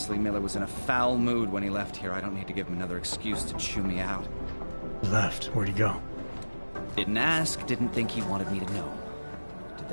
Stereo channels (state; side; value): inverted; both; correlation -1.00